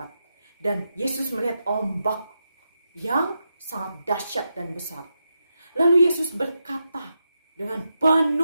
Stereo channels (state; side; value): inverted; both; correlation -0.86